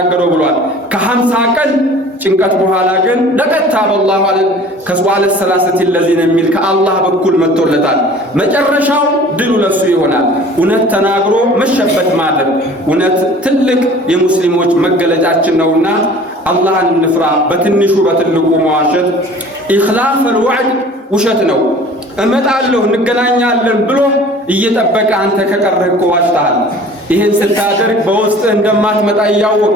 ብሏል። ከ50 ቀን ጭንቀት በኋላ ግን ለቀታ በአላህ ማለት ከሷለ ሰላሰት ለዚነ የሚል ከአላህ በኩል መጥቶለታል። መጨረሻው ድሉ ለሱ ይሆናል። እውነት ተናግሮ መሸበት ማለት እውነት ትልቅ የሙስሊሞች መገለጫችን ነውና አላህን እንፍራ። በትንሹ በትልቁ መዋሸት ኢኽላፍ الوعد ውሸት ነው። እመጣለሁ እንገናኛለን ብሎ እየጠበቀ አንተ ከቀረህ እኮ ዋሽተሃል። ይሄን ስታደርግ በውስጥ እንደማትመጣ እያወቅ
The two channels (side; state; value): both; normal; correlation 0.46